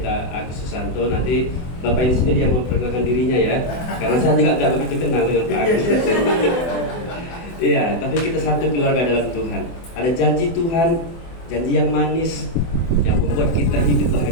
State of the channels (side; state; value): right; late; 24 ms